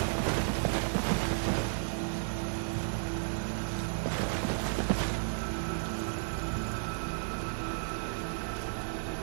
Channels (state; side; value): silent; left; digital silence